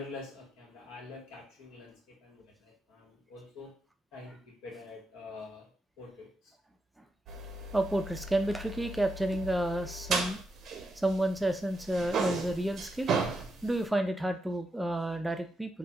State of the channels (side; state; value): both; normal; correlation 0.84